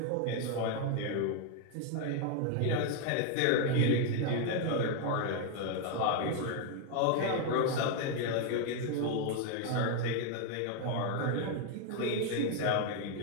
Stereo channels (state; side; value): different; both; correlation 0.00